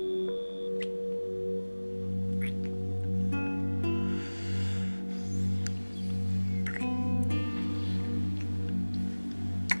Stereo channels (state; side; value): inverted; both; correlation -1.00